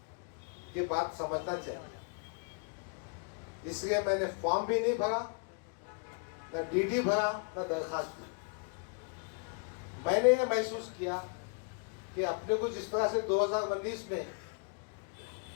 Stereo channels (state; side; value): quieter; right; 38.3 dB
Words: कि बात समझना चाहिए, इसलिए मैंने फॉर्म भी नहीं भरा, न डीडी भरा, न दरखास्त दी। मैंने ये महसूस किया कि अपने को जिस तरह से 2019 में